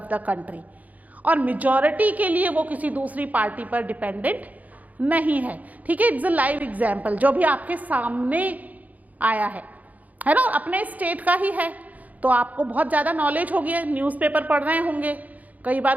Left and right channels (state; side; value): late; left; 0.076 ms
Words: the country और मेजॉरिटी के लिए वो किसी दूसरी पार्टी पर डिपेंडेंट नहीं है। ठीक है, इट्स अ लाइव एग्जाम्पल जो भी आपके सामने आया है ना, अपने स्टेट का ही है तो आपको बहुत ज़्यादा नॉलेज होगी, न्यूज़पेपर पढ़ रहे होंगे, कई